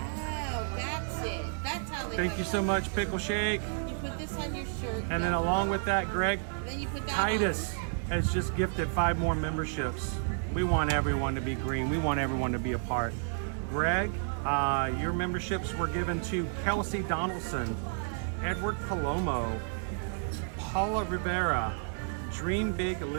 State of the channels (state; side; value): silent; left; 57 dB below the other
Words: that's it. That's how they Thank you so much, Pickle Shake. You put this on your shirt. And then along with that, Greg Then you put that Titus has just gifted 5 more memberships. We want everyone to be green. We want everyone to be a part. Greg, your memberships were given to Kelsey Donaldson, Edward Palomo, Paula Rivera, Dream Big,